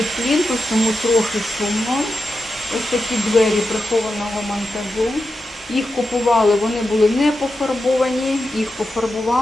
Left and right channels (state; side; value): normal; both; correlation 0.89